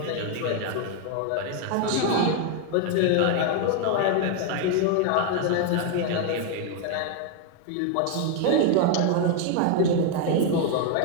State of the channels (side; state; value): both; different; correlation 0.00